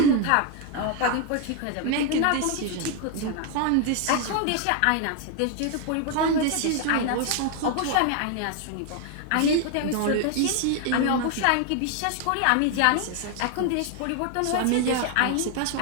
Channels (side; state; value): both; different; correlation 0.01